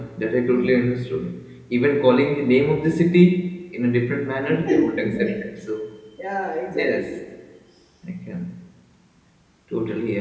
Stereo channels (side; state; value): both; identical; correlation 1.00